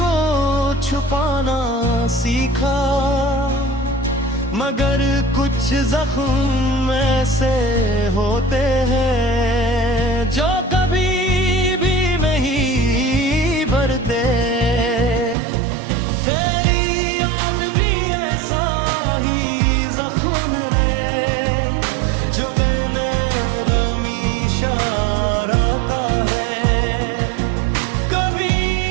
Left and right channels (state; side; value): drops out; left; at 15.4 s